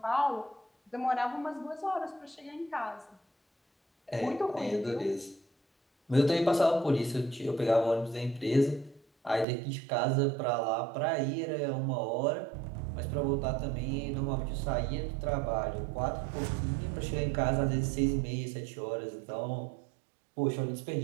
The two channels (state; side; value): drops out; left; at 9.5 s